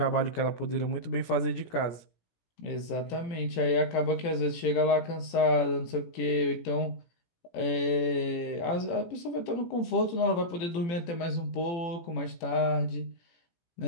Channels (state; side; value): late; right; 18 ms